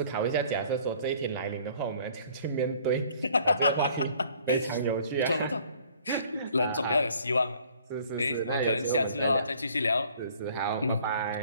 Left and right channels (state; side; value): inverted; both; correlation -0.56